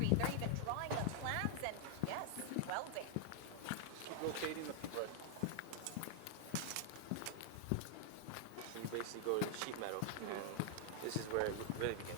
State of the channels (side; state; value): both; different; correlation 0.00